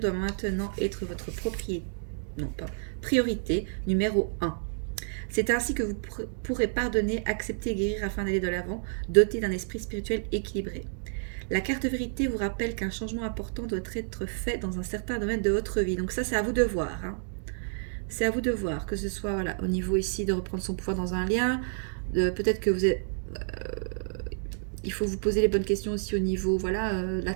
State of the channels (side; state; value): left; silent; digital silence